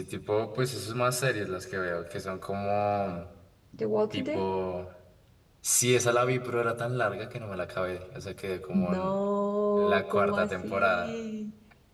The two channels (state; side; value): identical; both; correlation 1.00